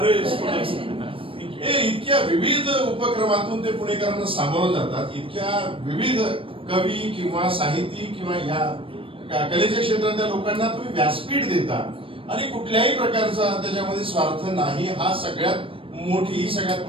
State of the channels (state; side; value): late; left; 0.26 ms